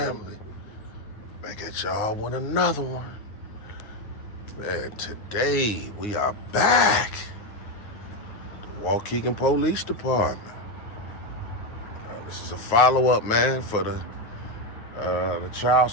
Back at y'all with another one. Man, today we are back. The Waukegan Police Department. This is a follow-up, man, for the child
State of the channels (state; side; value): late; right; 9.6 ms